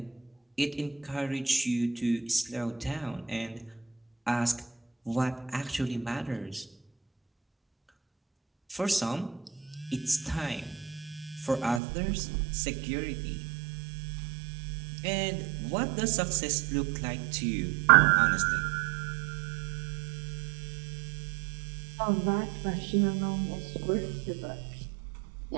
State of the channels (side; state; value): left; drops out; at 11.8 s